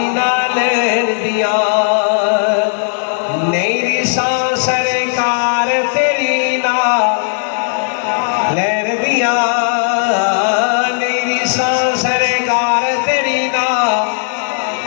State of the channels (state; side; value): silent; right; digital silence